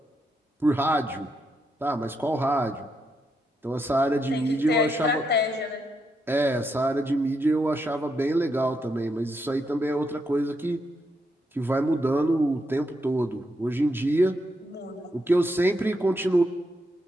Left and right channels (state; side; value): normal; both; correlation 0.81